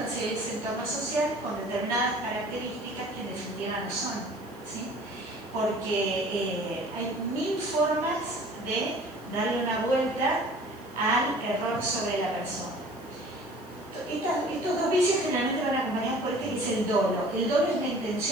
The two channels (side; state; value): left; noise; hiss, 25 dB below the sound